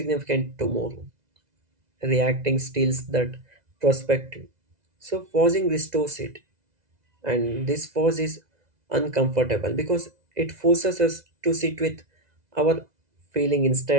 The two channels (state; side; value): late; left; 2.0 ms